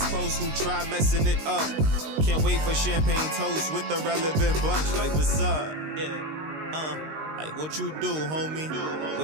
close who try messing it up. Can't wait for champagne toast with the relevant bunch. Like, what's up? Yeah. Like, what you do, homie?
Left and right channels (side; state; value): left; late; 19 ms